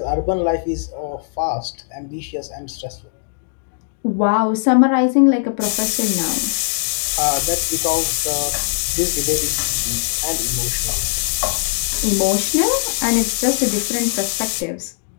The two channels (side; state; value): right; silent; digital silence